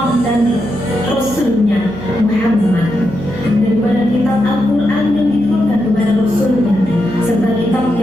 dan Rasulnya Muhammad, daripada kitab Al-Quran yang diturunkan kepada Rasulnya serta kitab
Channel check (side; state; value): right; noise; hum, 12 dB below the sound